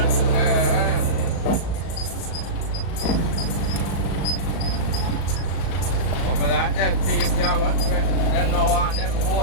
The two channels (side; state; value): right; late; 37 ms